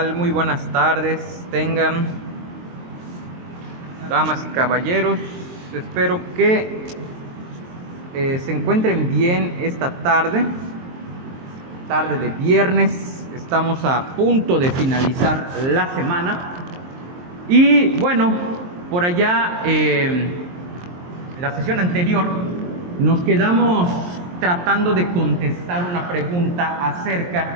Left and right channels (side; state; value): left; late; 23 ms